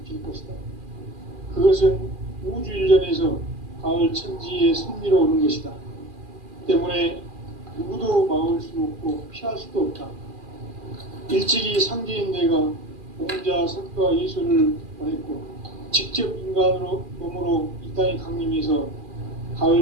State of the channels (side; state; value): left; late; 2.4 ms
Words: 것이다. 그것은 우주 일련에서 가을 천지의 섭리로 오는 것이다. 때문에 누구도 막을 수 없고 피할 수도 없다. 일찍이 상제인 내가 공자, 석가, 예수를 보냈고 직접 인간으로 몸으로 이 땅에 강림해서